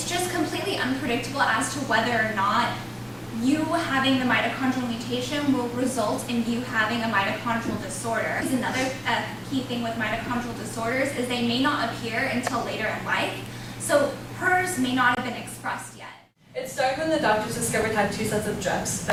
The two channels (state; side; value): identical; both; correlation 1.00